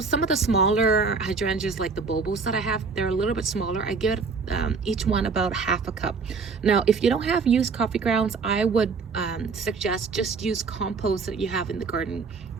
some of the smaller hydrangeas like the Bobos that I have, they're a little bit smaller. I give each one about half a cup. Now, if you don't have used coffee grounds, I would suggest just use compost that you have in the garden.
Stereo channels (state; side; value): quieter; left; 4.8 dB